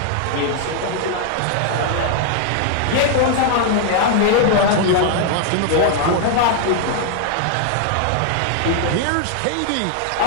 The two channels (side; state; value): both; different; correlation 0.00